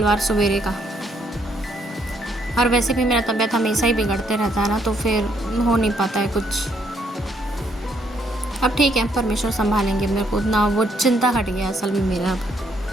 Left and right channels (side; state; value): both; normal; correlation 0.71